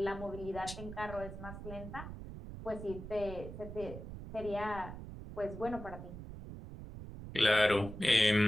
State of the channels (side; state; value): right; noise; rumble, 10 dB below the sound